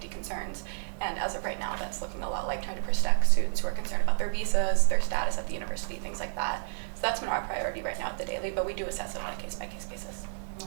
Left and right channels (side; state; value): left; silent; 57 dB below the other